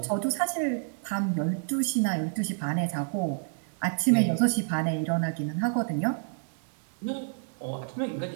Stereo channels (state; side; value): silent; left; digital silence